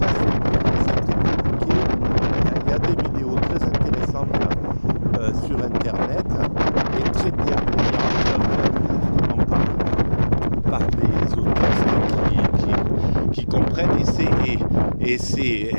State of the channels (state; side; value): inverted; both; correlation -1.00